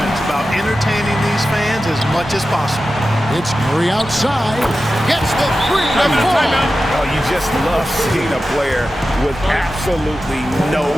about entertaining these fans as much as possible. It's Curry outside. Gets the 3 to fall. Oh, you just love seeing a player with absolutely no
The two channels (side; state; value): both; normal; correlation 0.93